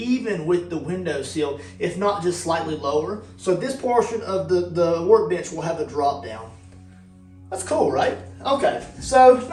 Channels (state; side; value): identical; both; correlation 1.00